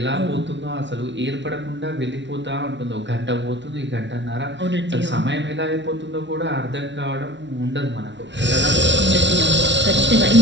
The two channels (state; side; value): late; left; 0.52 ms